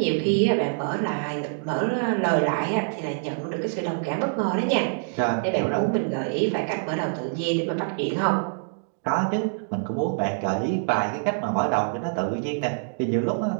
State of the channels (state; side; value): silent; left; digital silence